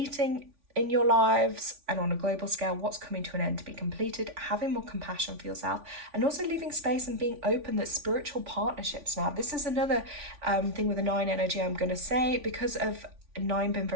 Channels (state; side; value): late; left; 3.5 ms